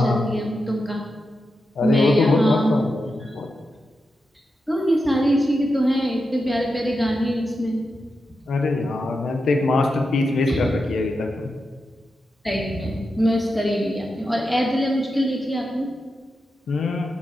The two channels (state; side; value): normal; both; correlation 0.88